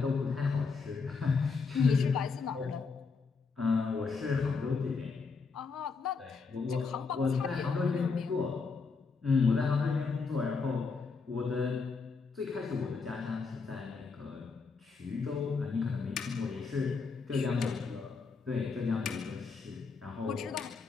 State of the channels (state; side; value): quieter; right; 4.8 dB